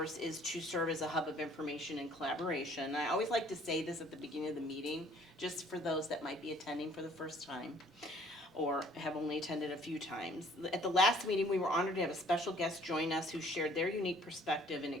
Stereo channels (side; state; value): both; normal; correlation 0.57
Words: is to serve as a hub of information and collaboration. I always like to say this at the beginning of the meeting, just for those that might be attending for the first time or have only attended a few times. At the last meeting, we were honored to have a special guest join us who shared their unique perspective and